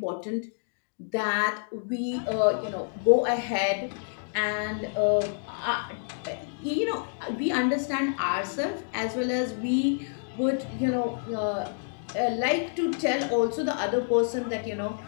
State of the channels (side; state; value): right; silent; digital silence